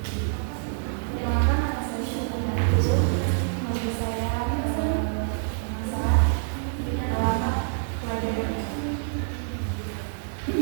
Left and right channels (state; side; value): silent; left; digital silence